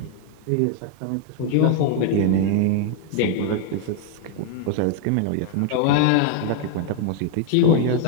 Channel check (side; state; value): both; different; correlation 0.00